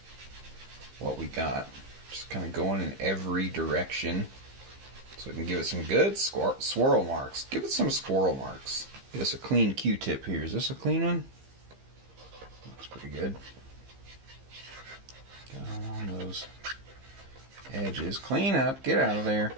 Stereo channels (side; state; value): left; late; 15 ms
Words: what we got. Just kind of going in every direction so we can give it some good swirl marks. Give it some squirrel marks. Get us a clean Q-tip here. Is this a clean one? Looks pretty good. Got on those edges. Clean up. Get out of there.